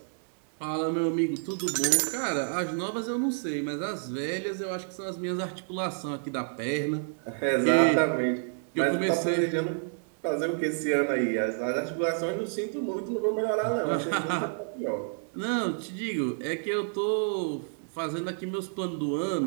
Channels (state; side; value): silent; left; digital silence